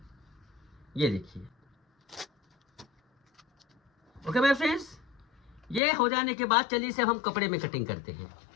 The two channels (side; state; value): right; drops out; at 5.8 s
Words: ये देखिए ओके माय फ्रेंड्स। ये हो जाने के बाद चलिए इसे हम कपड़े में कटिंग करते हैं।